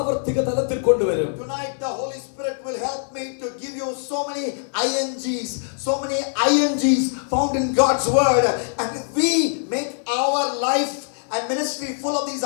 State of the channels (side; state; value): right; silent; 64 dB below the other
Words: തലത്തിൽ കൊണ്ടുവരും? Tonight the Holy Spirit will help me to give you so many INGs found in God's word, and if we make our life and ministry full of these